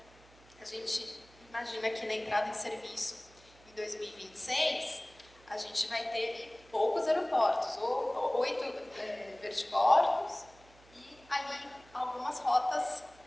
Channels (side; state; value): right; noise; hum, 26 dB below the sound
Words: A gente imagina que na entrada em serviço em 2026 a gente vai ter poucos aeroportos, ou 8 vertiportos e ali algumas rotas